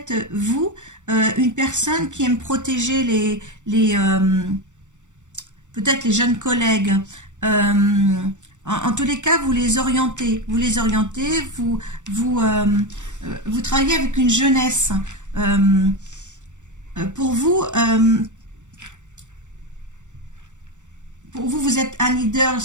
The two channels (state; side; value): late; left; 0.85 ms